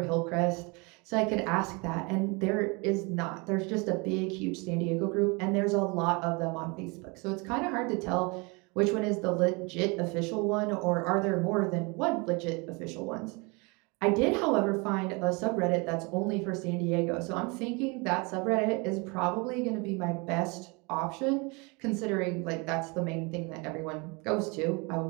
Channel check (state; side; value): quieter; left; 29.0 dB